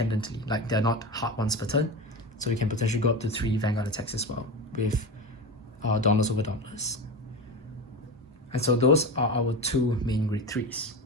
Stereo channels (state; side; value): normal; both; correlation 0.23